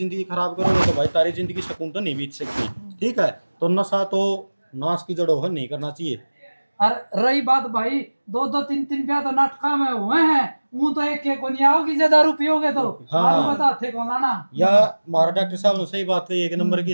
खराब करोगे तो भाई तारी जिंदगी सुकून तो नहीं बीत सकती। ठीक है तो नशा तो नाश की जड़ों है नहीं करना चाहिए। और रही बात भाई दो दो तीन तीन ब्याह तो नाटका में हुए हैं वो तो एक को नहीं आओगी जे दारू पियोगे तो हाँ। दारू बता थे कौन लाना या हमारा डॉक्टर साहब ने सही बात कही एक नंबर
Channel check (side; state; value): both; inverted; correlation -1.00